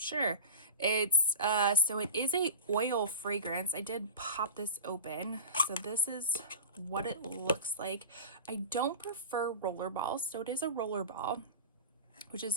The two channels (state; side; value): inverted; both; correlation -0.31